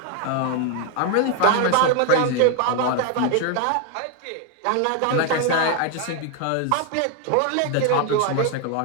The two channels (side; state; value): both; different; correlation 0.01